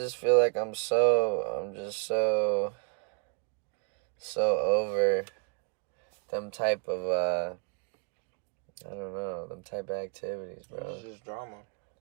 feel like I'm just so over them type of, I don't know, them type of activities, bro. It's just drama.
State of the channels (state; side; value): quieter; left; 36.5 dB